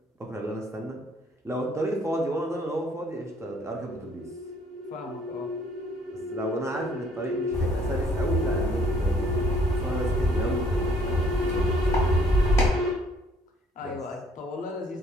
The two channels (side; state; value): both; normal; correlation 0.62